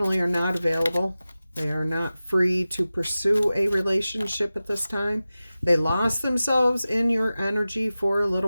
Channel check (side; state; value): both; inverted; correlation -0.95